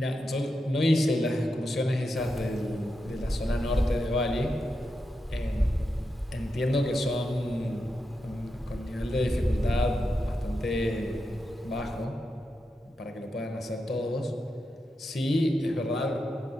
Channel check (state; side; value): normal; both; correlation 0.87